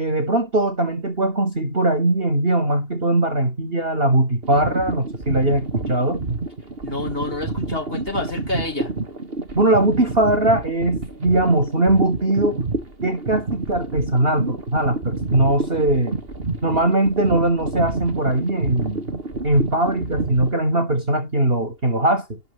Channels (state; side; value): late; left; 2.8 ms